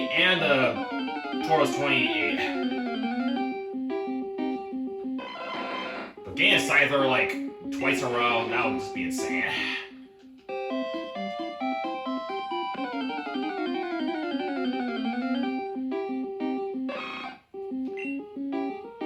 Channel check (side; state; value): both; identical; correlation 1.00